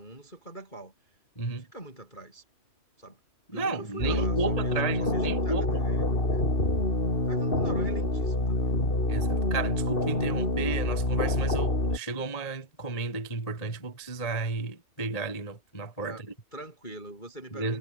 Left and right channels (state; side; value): late; right; 1.8 ms